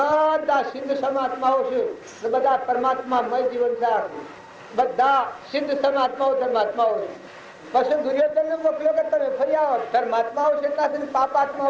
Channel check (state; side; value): identical; both; correlation 1.00